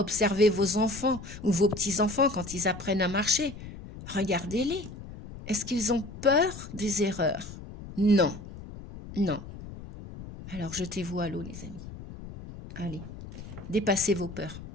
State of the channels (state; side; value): noise; left; rumble, 13 dB below the sound